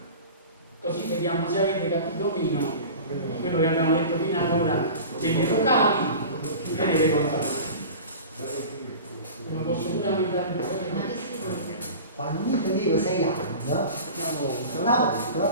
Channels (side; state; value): both; inverted; correlation -0.36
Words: così vediamo se avete capito o meno quello che abbiamo detto fino ad ora degli locali e delle console. Non posso pure aumentare un po'. Quando io tenevo 6 anni, una